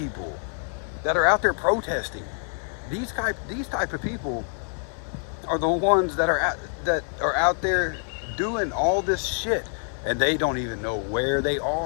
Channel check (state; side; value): silent; right; 61 dB below the other